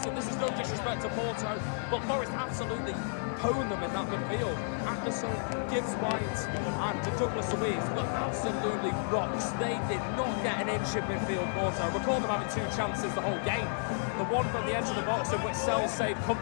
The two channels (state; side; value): silent; right; digital silence